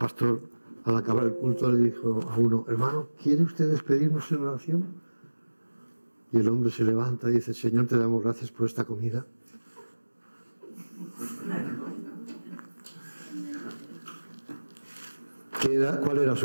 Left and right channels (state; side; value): inverted; both; correlation -1.00